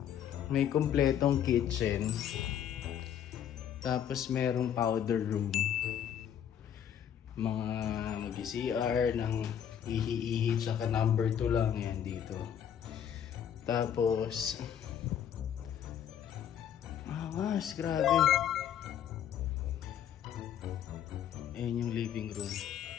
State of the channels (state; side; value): quieter; right; 9.3 dB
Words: May kompletong kitchen. Tapos merong powder room. Mga mag-CR ng ihi-ihi tsaka number 2 lang yan dito. Tapos angas, grabe. Ayan yung living room.